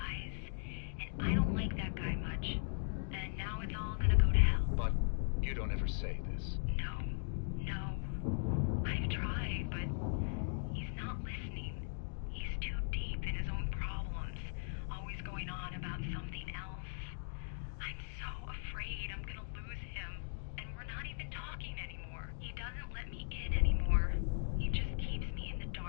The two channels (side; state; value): right; silent; digital silence